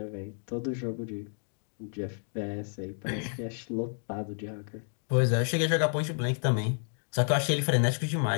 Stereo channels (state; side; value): silent; right; 57 dB below the other